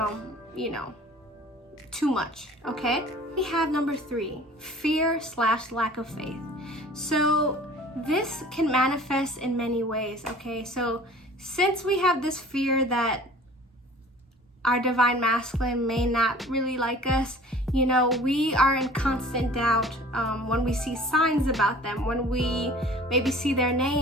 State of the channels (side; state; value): both; normal; correlation 0.47